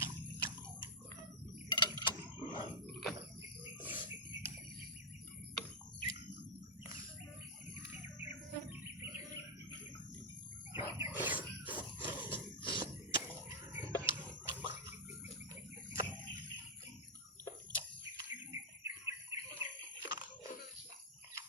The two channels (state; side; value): normal; both; correlation -0.03